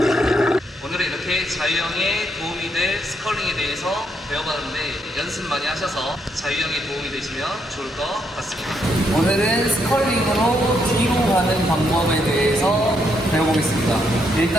오늘은 이렇게 자유형에 도움이 될 스컬링에 대해서 배워봤는데 연습 많이 하셔서 자유형에 도움이 되시면 좋을 것 같습니다. 오늘은 스컬링으로 뒤로 가는 방법에 대해서 배워보겠습니다.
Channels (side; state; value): both; normal; correlation 0.76